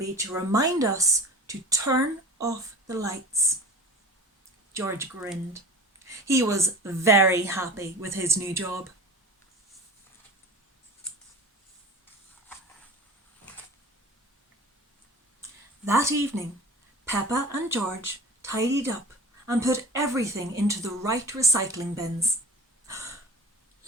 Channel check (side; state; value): both; normal; correlation 0.37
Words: to remind us to turn off the lights." George grinned. He was very happy with his new job. That evening, Peppa and George tidied up and put everything into the right recycling bins.